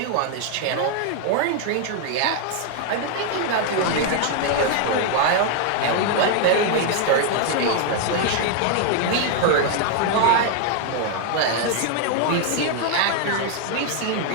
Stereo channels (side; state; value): both; different; correlation 0.00